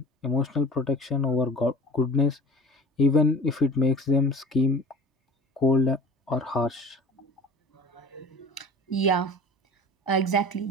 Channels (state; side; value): normal; both; correlation 0.41